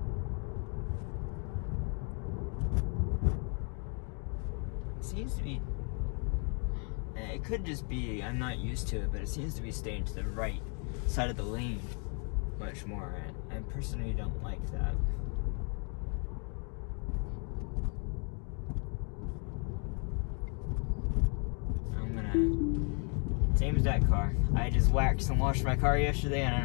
It seems to be, it could just be I'm not used to it, but it seems to be staying to the right side of the lane much more. I personally don't like that. Same as that car. I just waxed and washed my car yesterday, and I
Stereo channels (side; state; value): right; quieter; 39.2 dB